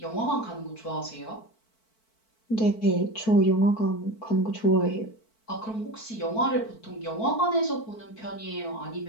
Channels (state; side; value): late; right; 4.5 ms